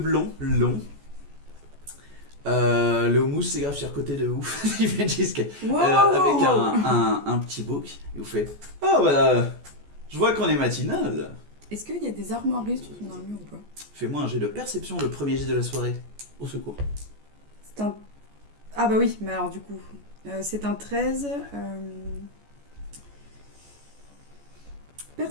longs. Le houmous c'est grave sur côté de ouf. Il fait jusqu'à avec un petit bouc. Et vous fait oh bah je vois qu'on est matinal. Est-ce qu'il y a des armoiries sur ton armure ou pas? Fais-moi un jet de perception, le premier jet de la soirée. Au secours. C'est un... Ah bah oui, mais alors du coup... c'est un 13...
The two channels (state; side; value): late; left; 14 ms